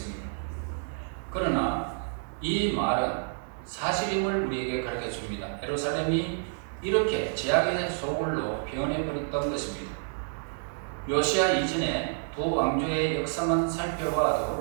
그러나 이 말은 사실임을 우리에게 가르쳐 줍니다. 예루살렘이 이렇게 제약의 소굴로 변해버렸던 것입니다. 요시야 이전에 두 왕조의 역사만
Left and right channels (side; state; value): left; silent; 59 dB below the other